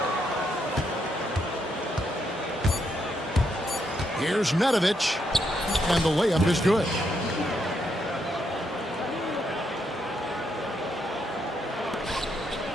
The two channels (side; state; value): both; normal; correlation 0.77